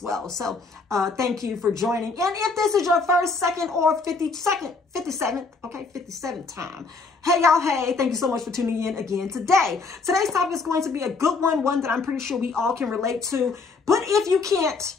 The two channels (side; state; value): right; quieter; 4.2 dB